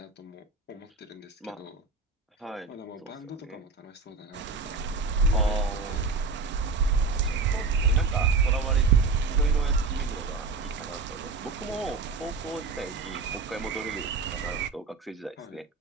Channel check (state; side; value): quieter; left; 4.3 dB